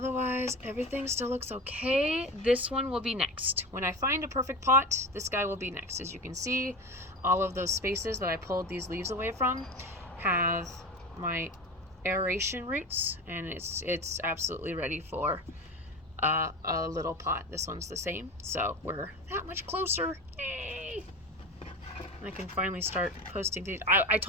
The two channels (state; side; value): normal; both; correlation 0.28